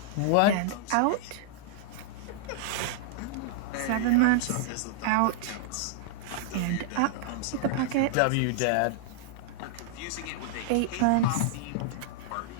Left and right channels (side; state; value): both; different; correlation -0.01